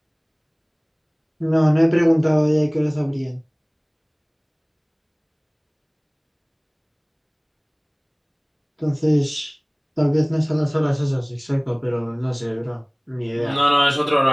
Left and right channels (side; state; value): both; identical; correlation 1.00